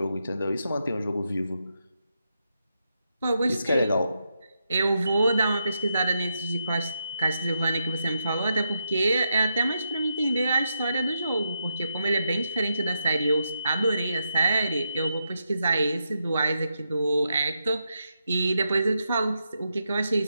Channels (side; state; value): both; inverted; correlation -0.84